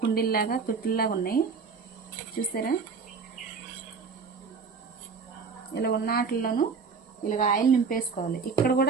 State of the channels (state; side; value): quieter; left; 5.3 dB